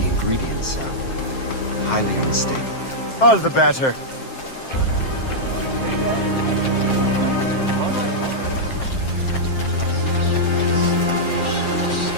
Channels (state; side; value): late; right; 7.6 ms